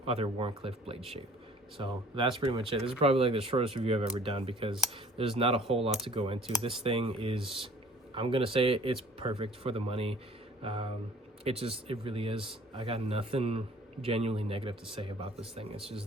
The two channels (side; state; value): both; normal; correlation 0.51